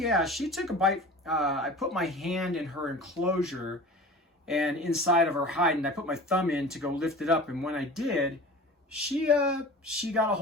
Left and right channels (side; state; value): both; normal; correlation 0.38